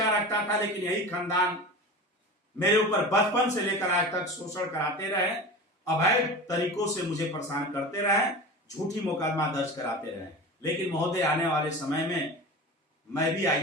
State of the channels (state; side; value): normal; both; correlation 0.32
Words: रखता था, लेकिन यही खानदान मेरे ऊपर बचपन से लेकर आज तक शोषण कराते रहे, अवैध तरीकों से मुझे परेशान करते रहे, झूठी मुकदमा दर्ज कराते रहे। लेकिन महोदय आने वाले समय में मैं भी